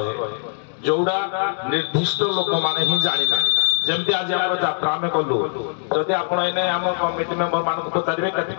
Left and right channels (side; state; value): right; silent; digital silence